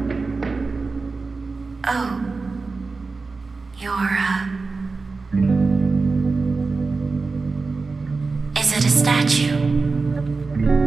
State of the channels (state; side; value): quieter; left; 4.1 dB